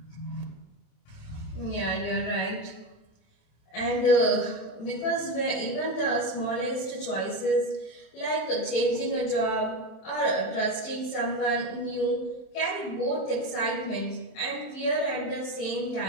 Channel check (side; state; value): right; late; 27 ms